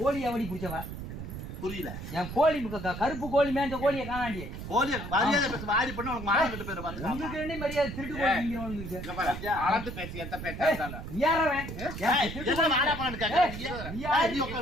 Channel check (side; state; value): right; noise; rumble, 8 dB below the sound